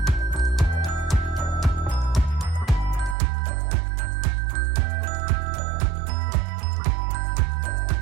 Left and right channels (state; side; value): drops out; left; at 3.2 s